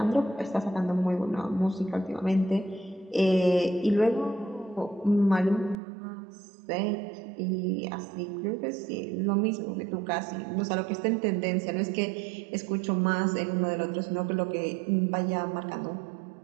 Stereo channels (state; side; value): drops out; left; at 5.8 s